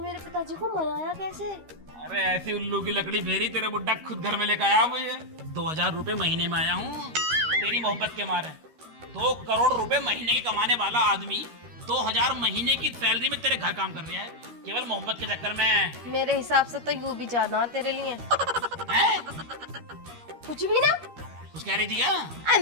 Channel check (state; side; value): late; left; 13 ms